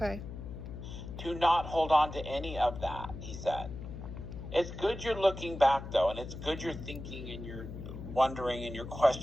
To not hold on to any of that, he said. It's good you're looking back, though, and it's good you're thinking and you're wondering and you're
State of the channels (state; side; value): noise; left; hum, 10 dB below the sound